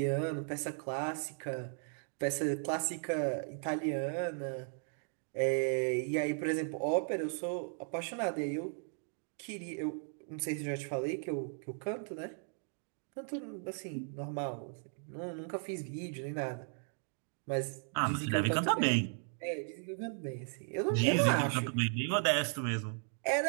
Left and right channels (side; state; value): left; silent; 54 dB below the other